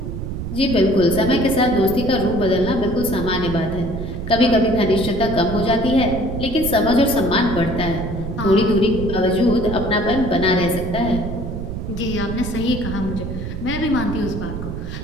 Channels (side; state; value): right; noise; rumble, 6 dB below the sound